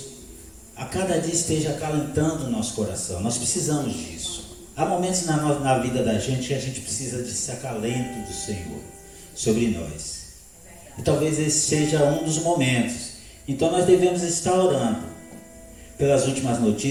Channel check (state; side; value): identical; both; correlation 1.00